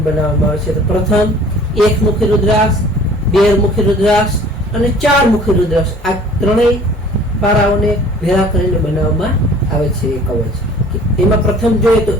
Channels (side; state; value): both; normal; correlation 0.50